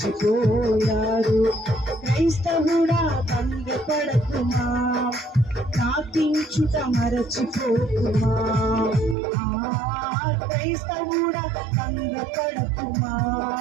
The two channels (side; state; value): left; drops out; at 9.2 s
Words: క్రైస్తవుడా భంగపడకుమా, ప్రార్థించుట మరచిపోకుమా. క్రైస్తవుడా భంగపడకుమా,